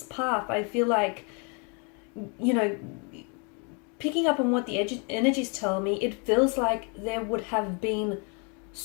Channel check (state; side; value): quieter; right; 35.9 dB